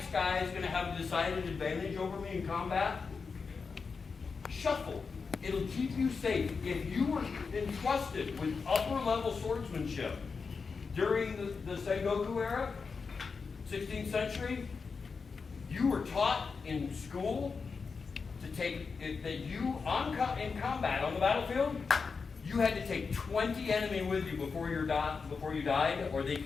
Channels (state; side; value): quieter; right; 5.0 dB